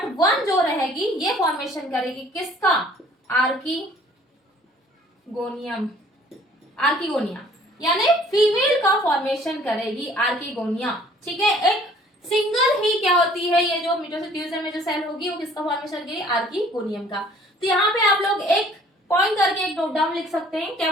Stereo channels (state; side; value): normal; both; correlation 0.55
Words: 1 जो रहेगी ये फॉर्मेशन करेगी किसका, आर्किगोनियम, आर्किगोनिया, यानी फीमेल का फॉर्मेशन करेगी आर्किगोनिया। ठीक है, एक सिंगल ही क्या होती है, ये जो मिटोसिस डिवीजन में जो सेल होगी वो किसका फॉर्मेशन करेगी, आर्किगोनियम का। तो यहाँ पे आप लोग एक पॉइंट करके एक नोट डाउन लिख सकते हैं, क्या